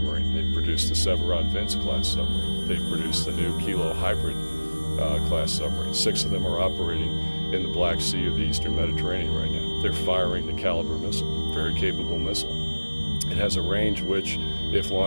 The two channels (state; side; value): inverted; both; correlation -1.00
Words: They've produced the Severod-Vince-class submarine. They've produced the new Kilo Hybrid class submarine. 6 of them are operating in the Black Sea or the Eastern Mediterranean right now. They're firing the Caliber missile, very capable missile. It has a range which, if